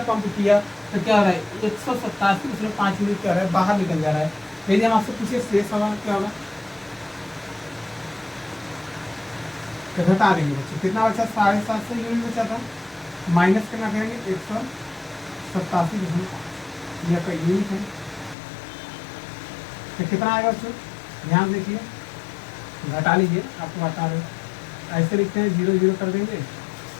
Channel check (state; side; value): drops out; right; at 18.4 s